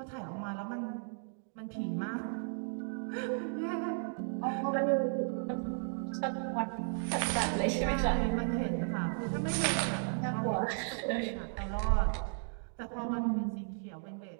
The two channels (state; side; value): silent; left; 55 dB below the other